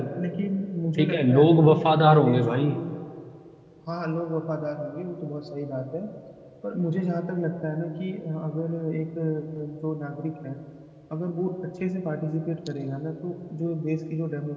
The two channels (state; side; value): identical; both; correlation 1.00